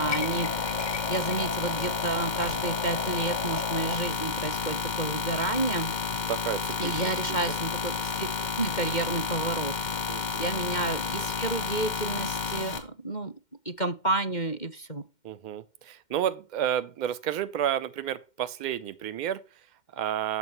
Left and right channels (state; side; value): late; right; 2.1 ms